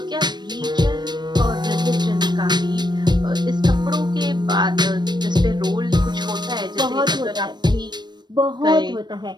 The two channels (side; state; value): left; late; 0.21 ms